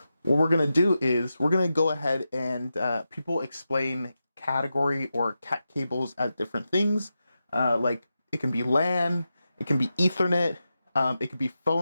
what we're going to do is we're going to go ahead and people explain category or cat cables as different things. Like it can be LAN, it can be Ethernet, it could be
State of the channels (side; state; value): both; inverted; correlation -0.90